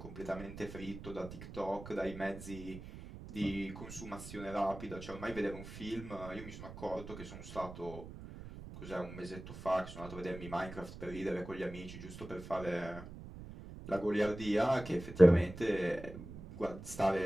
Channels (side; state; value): right; noise; rumble, 12 dB below the sound